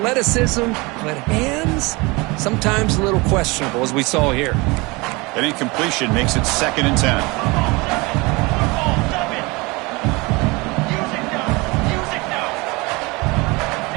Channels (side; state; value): left; quieter; 25.0 dB